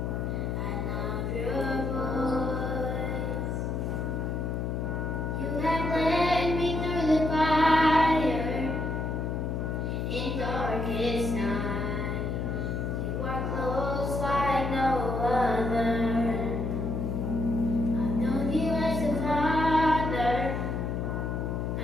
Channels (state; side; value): noise; left; hum, 1 dB below the sound